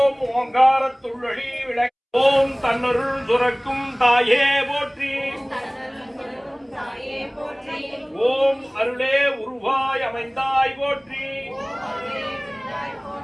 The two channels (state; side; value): identical; both; correlation 1.00